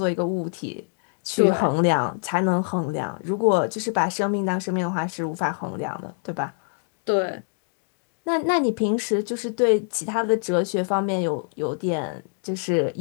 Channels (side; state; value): right; silent; 57 dB below the other